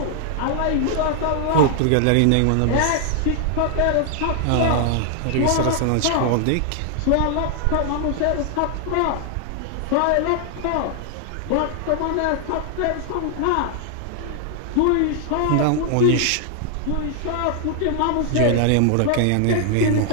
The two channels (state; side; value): different; both; correlation 0.00